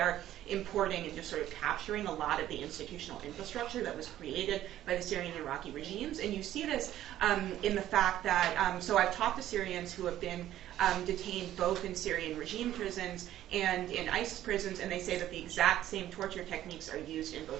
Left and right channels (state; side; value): quieter; left; 12.9 dB